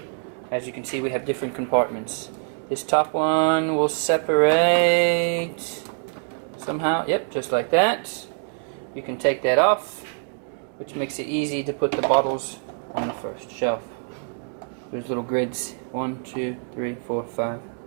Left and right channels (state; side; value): silent; left; 58 dB below the other